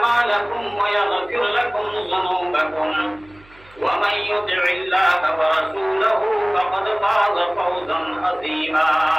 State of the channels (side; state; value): right; noise; hum, 27 dB below the sound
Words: ويغفر لكم ذنوبكم ومن يطع الله ورسوله فقد فاز فوزا عظيما